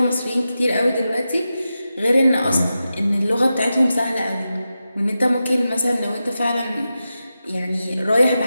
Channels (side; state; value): both; inverted; correlation -0.91